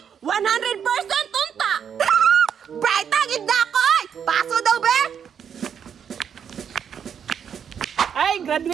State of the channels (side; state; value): left; quieter; 7.9 dB